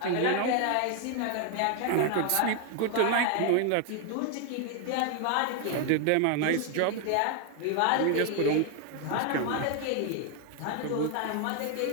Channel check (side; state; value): both; different; correlation 0.01